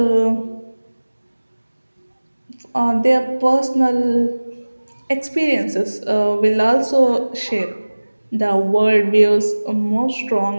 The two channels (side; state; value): both; inverted; correlation -1.00